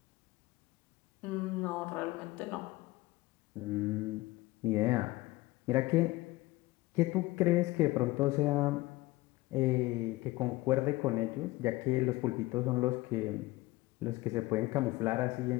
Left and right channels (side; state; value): right; quieter; 19.7 dB